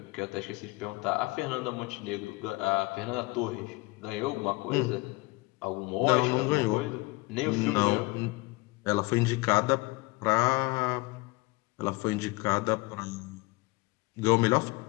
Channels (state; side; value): quieter; right; 23.7 dB